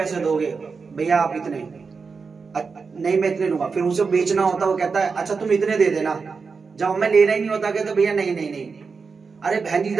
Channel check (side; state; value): left; quieter; 5.0 dB